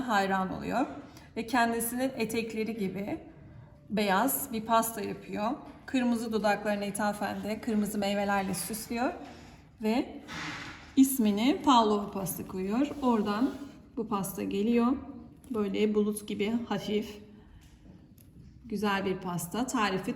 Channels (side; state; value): both; identical; correlation 1.00